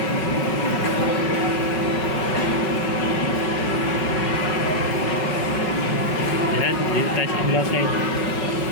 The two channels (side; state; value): right; late; 5.4 ms